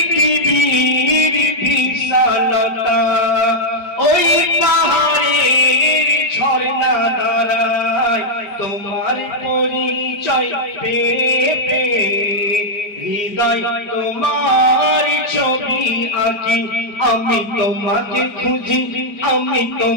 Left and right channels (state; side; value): late; right; 4.8 ms